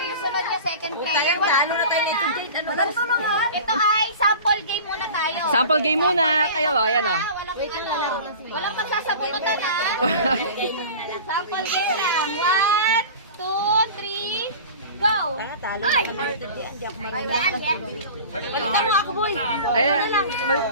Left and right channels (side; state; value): both; inverted; correlation -0.37